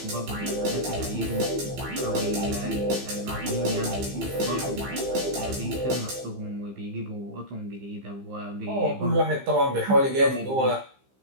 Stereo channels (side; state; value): left; late; 15 ms